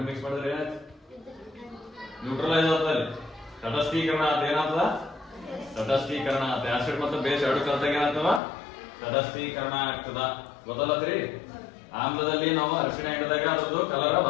ಮಿಕ್ಸ್ ಮಾಡಿದ್ರೆ ಏನಾಯ್ತು, ನ್ಯೂಟ್ರಲೈಸ್ ಆಗ್ತದೆ, ತಟಸ್ಥೀಕರಣ ಅಂತ. ಏನಾಗ್ತದ, ತಟಸ್ಥೀಕರಣ ಅಂತ. ಆಸಿಡ್ ಮತ್ತು ಬೇಸ್ ಎರಡು ಕಲ್ತಾಗ ಏನಾಗ್ತವ, ತಟಸ್ಥೀಕರಣ ಆಗ್ತದ. ಗೊತ್ತಲ್ಲತ್ರಿ. ಆಮ್ಲದಲ್ಲಿ ನಾವು ಅರಿಶಿಣ ಹಿಡಿದಾಗ ಅದ್ರದ್ದು ಕಲರ್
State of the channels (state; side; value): drops out; right; at 8.4 s